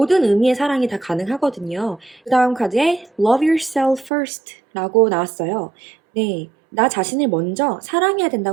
의미의 사랑이 다 가능하거든요. 그 다음 카드에 Love yourself first 라고 나왔어요. 네, 나 자신을 먼저 사랑해야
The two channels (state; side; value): drops out; left; at 4.1 s